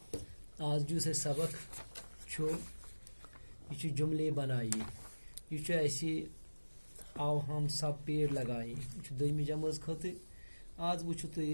آج جو سے سبق چھو یہ جملے بنائیے. یہ ایسے آو ہم سب پیڑ لگائیں یہ دویمہِ جمٲژ خٲطرٕ. آج وچھو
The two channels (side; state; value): both; inverted; correlation -1.00